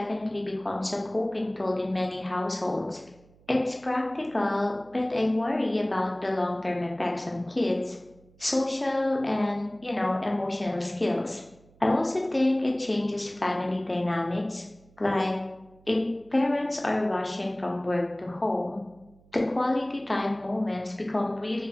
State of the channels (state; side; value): noise; right; hum, 28 dB below the sound